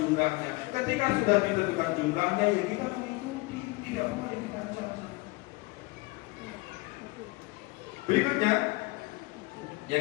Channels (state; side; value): quieter; right; 23.3 dB